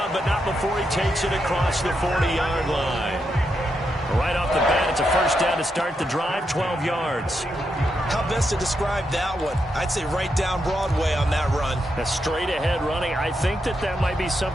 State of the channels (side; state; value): both; normal; correlation 0.83